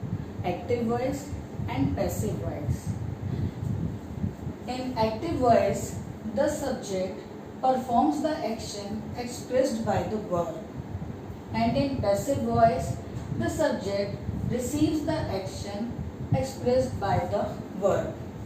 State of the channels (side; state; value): both; identical; correlation 1.00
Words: active voice and passive voice. In active voice, the subject performs the action expressed by the verb, and in passive voice, the subject receives the action expressed by the verb.